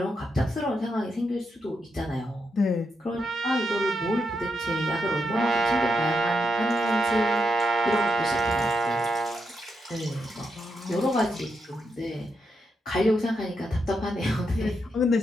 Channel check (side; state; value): both; normal; correlation 0.83